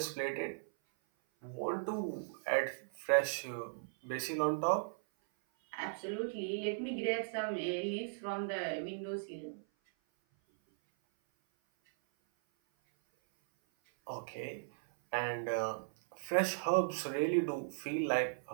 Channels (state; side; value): silent; left; 53 dB below the other